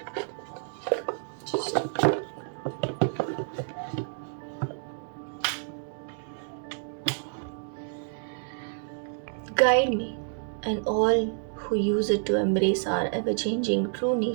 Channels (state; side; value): silent; left; digital silence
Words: Just guide me and all who use it to embrace our ever changing true